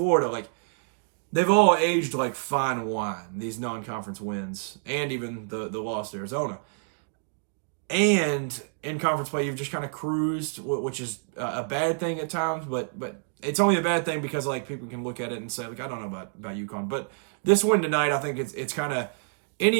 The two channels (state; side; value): silent; left; digital silence